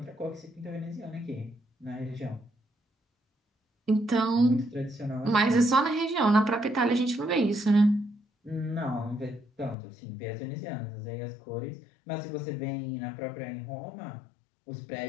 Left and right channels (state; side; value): drops out; right; at 9.8 s